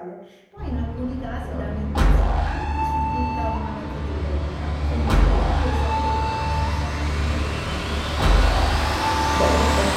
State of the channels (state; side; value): identical; both; correlation 1.00